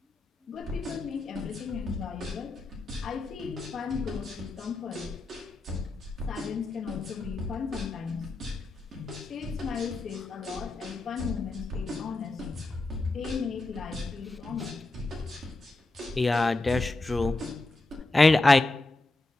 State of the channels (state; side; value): quieter; right; 3.1 dB